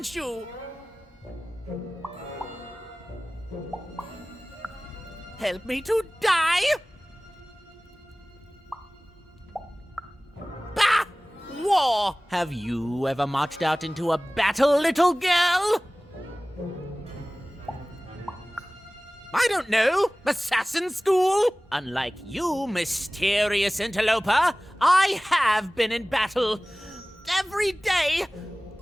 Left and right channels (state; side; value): normal; both; correlation 0.98